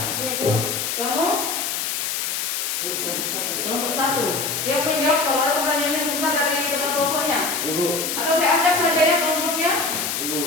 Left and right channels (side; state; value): left; noise; hiss, 1 dB below the sound